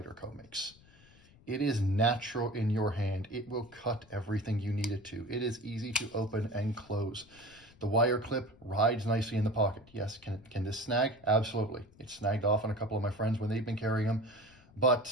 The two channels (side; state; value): left; noise; rumble, 26 dB below the sound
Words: makes. It is natural in your hand. It will cut everything you need it to. It is easy to open and close. The wire clip rides nicely in the pocket. Yes, can this snag? Absolutely. It's snagged off on a couple of my friends when they've been carrying them.